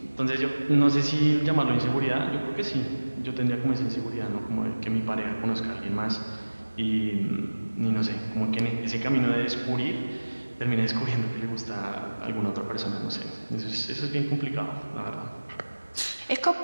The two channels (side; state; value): both; inverted; correlation -1.00